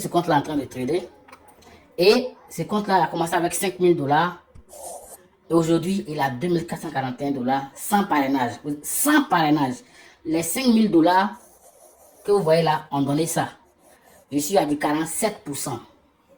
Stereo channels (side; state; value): both; identical; correlation 1.00